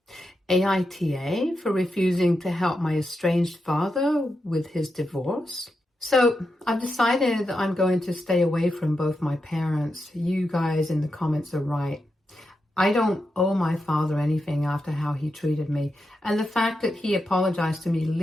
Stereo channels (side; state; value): both; normal; correlation 0.87